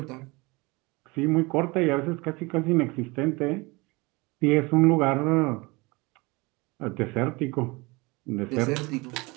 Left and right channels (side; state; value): left; quieter; 25.0 dB